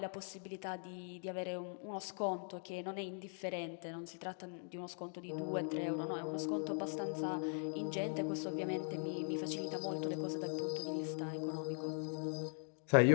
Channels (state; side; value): silent; right; 51 dB below the other